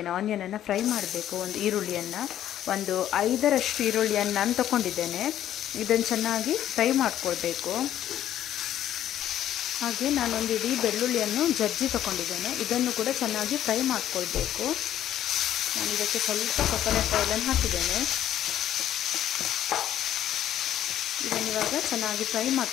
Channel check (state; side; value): quieter; right; 11.6 dB